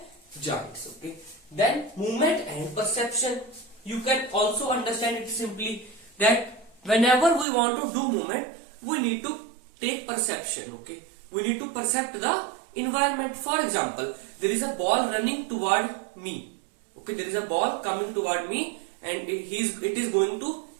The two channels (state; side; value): drops out; left; at 7.5 s